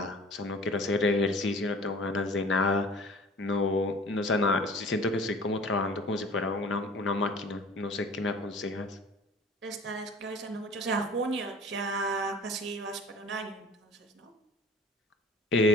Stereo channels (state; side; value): normal; both; correlation 0.45